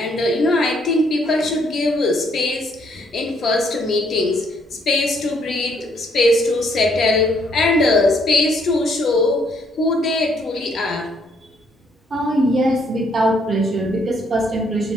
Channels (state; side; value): normal; both; correlation 0.69